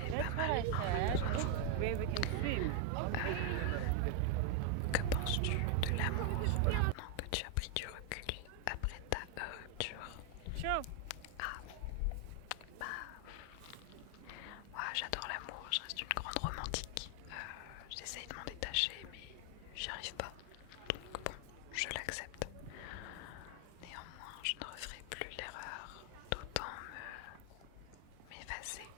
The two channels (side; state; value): both; different; correlation 0.01